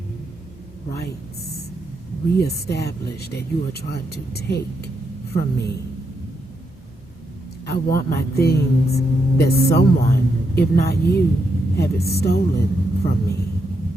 rights reestablished that you are trying to take from me. I want my things that someone, if not you, have it stolen from me.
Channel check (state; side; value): normal; both; correlation 0.81